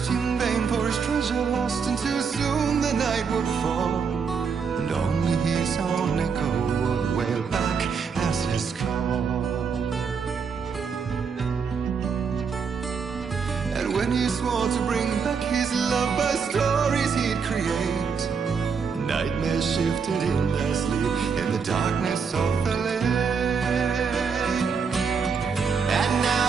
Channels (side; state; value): left; quieter; 5.8 dB